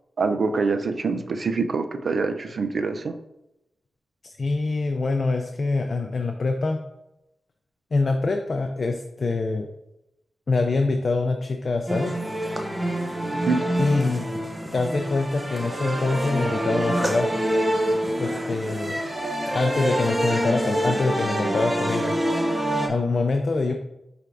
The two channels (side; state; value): both; normal; correlation 0.90